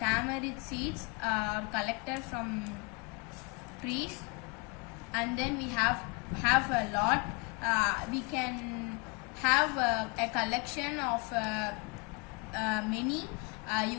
seeds are collected from trees, and then we have a lot. We can have a collection of many.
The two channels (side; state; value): right; quieter; 29.0 dB